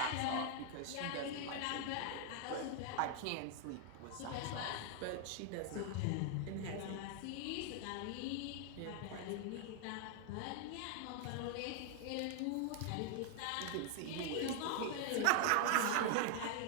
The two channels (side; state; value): both; different; correlation 0.00